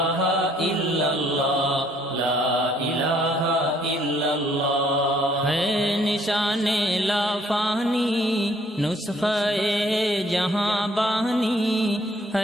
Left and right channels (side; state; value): both; normal; correlation 0.64